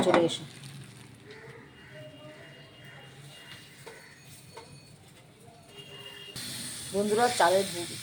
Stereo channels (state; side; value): identical; both; correlation 1.00